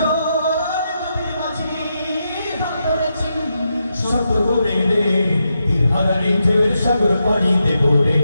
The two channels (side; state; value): both; inverted; correlation -0.84